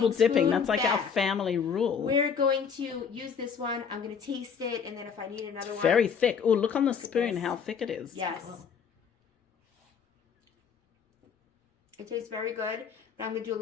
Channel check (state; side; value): quieter; right; 6.6 dB